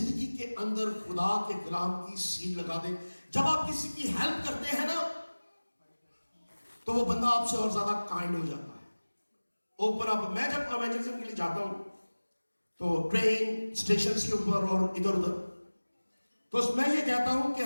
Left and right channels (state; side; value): inverted; both; correlation -1.00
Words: کے اندر خدا کے کلام کی سیل لگا دیں. جب آپ کسی کی ہیلپ کرتے ہیں نا تو وہ بندہ آپ سے اور زیادہ کائنڈ ہو جاتا ہے. اوپر آپ, میں جب ایونجلزم کے لیے جاتا ہوں تو ٹرین اسٹیشنز کے اوپر اور ادھر ادھر, تو میں یہ کہتا ہوں کہ